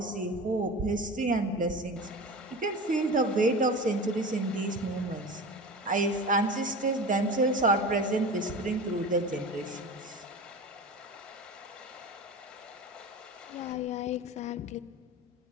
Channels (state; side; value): normal; both; correlation 0.31